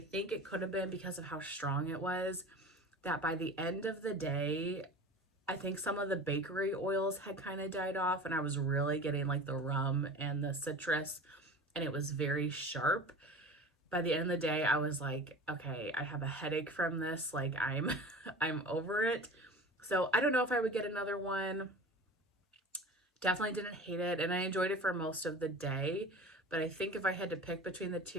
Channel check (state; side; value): normal; both; correlation 0.37